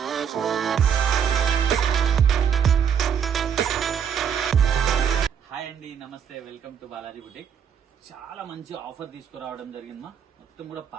Hi అండి, నమస్తే, welcome to Balaji boutique. చాలా మంచి ఆఫర్ తీసుకురావడం జరిగిందమ్మా. మొత్తం కూడా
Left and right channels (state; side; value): quieter; left; 7.8 dB